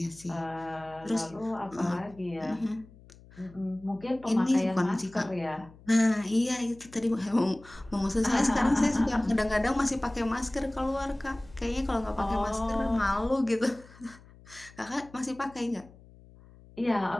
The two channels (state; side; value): noise; left; hum, 23 dB below the sound